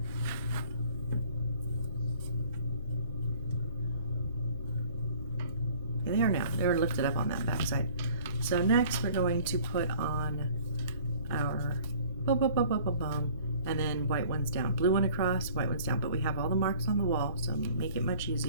They are now. They were lifted up on that back side. So next we're going to put on our and then white ones down. Blue one across, white ones down. But we have all the marks on the wall, so make it much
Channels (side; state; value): both; inverted; correlation -0.52